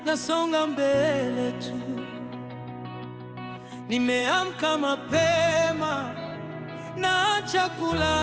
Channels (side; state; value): both; identical; correlation 1.00